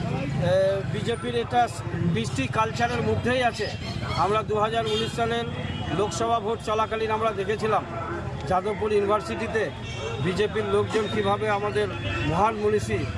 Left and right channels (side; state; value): both; identical; correlation 1.00